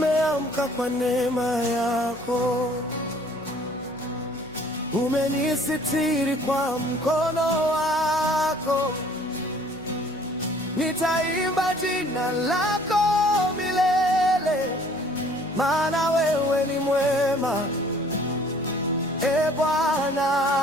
kwa neema yako, umenisitiri kwa mkono wako. Nitaimba jina lako milele, maana wewe ni mwema, e Bwana.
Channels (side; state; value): left; noise; hum, 23 dB below the sound